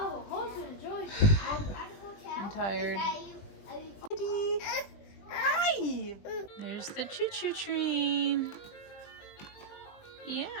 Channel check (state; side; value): late; right; 20 ms